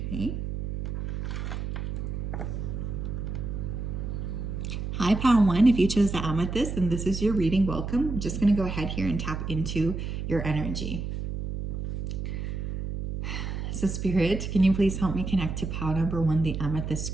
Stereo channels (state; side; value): noise; right; hum, 4 dB below the sound